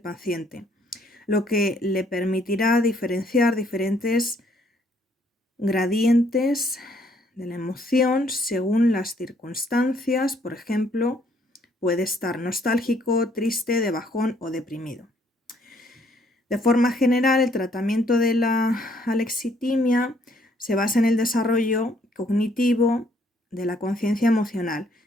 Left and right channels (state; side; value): normal; both; correlation 0.66